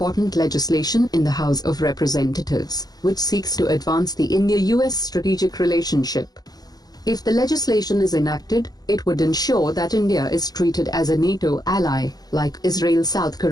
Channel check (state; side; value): late; right; 0.19 ms